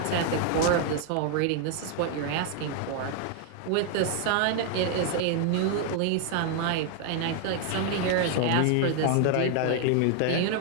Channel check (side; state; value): both; different; correlation 0.00